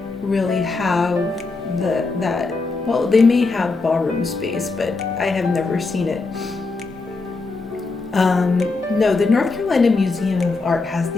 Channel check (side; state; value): right; quieter; 3.8 dB